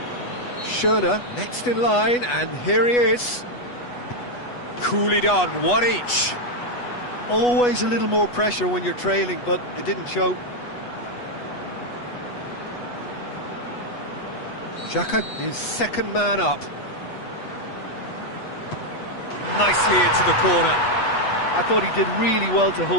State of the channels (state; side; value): late; right; 8.2 ms